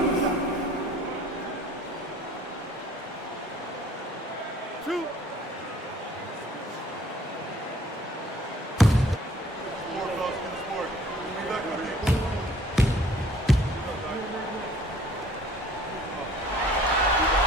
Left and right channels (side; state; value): both; normal; correlation 0.55